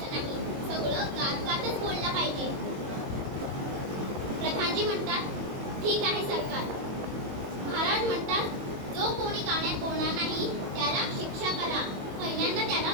नाही. सगळं गात बोललं पाहिजे. प्रधानजी म्हणतात, ठीक आहे सरकार. महाराज म्हणतात, जो कोणी गाण्यात बोलणार नाही त्याला शिक्षा करा. पहिल्यांदा त्याला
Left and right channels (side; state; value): left; late; 22 ms